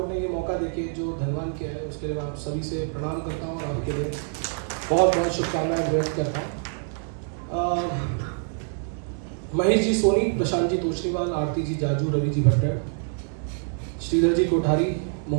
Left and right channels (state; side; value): silent; left; 58 dB below the other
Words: ने ये मौका देके जो धनवान किया है उसके लिए आप सभी से प्रणाम करता हूँ और आपके लिए बहुत बहुत शुभकामनाएं व्यक्त करता हूँ। महेश जी सोनी, प्रशांत जी तोशनीवाल, आरती जी जाजू, रवि जी भट्टर, श्रीधर जी कोठारी,